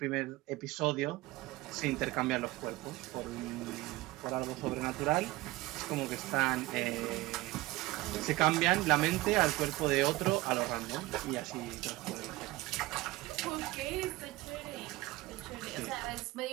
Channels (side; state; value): left; quieter; 19.4 dB